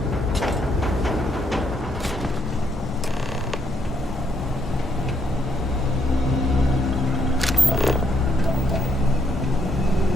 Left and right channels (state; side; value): normal; both; correlation 0.73